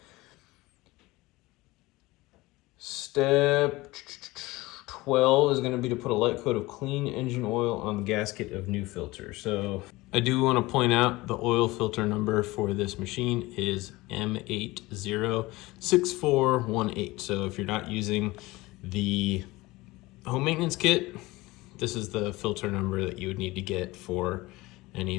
Step 12 is gonna be to put a light coat of clean engine oil on the gasket of new filter. So I do wanna point out the oil filter number for this machine is M806418. So if you're not using the home maintenance kit, this is the filter number that you would need to get for any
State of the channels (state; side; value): quieter; right; 20.5 dB